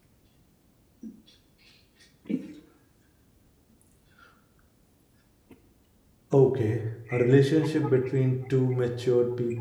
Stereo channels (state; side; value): identical; both; correlation 1.00